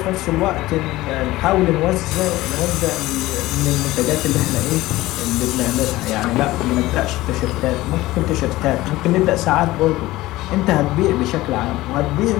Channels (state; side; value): quieter; right; 17.8 dB